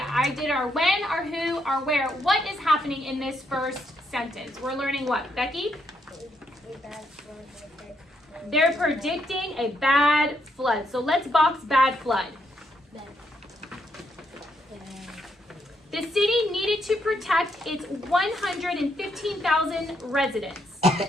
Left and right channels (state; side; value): normal; both; correlation 0.76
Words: did our when, our who, our where. What is happening in this first sentence? We're learning what, Becky? They're predicting a bad flood. So let's box bad flood. The city needed to protect its 115,000 residents.